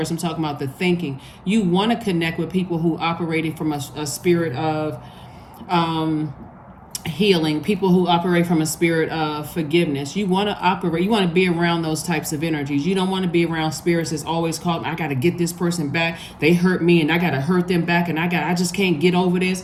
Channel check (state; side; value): identical; both; correlation 1.00